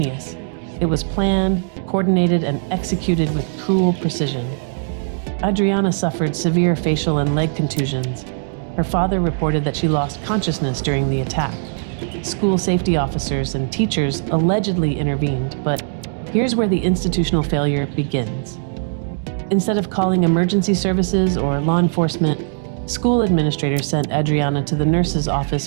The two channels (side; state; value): left; silent; digital silence